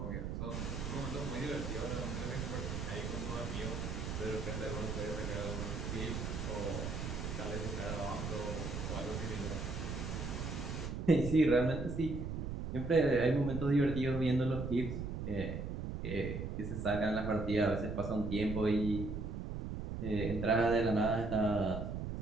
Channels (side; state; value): right; noise; rumble, 4 dB below the sound